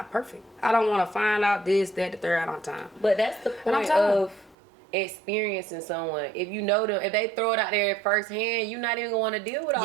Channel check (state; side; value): drops out; left; at 4.5 s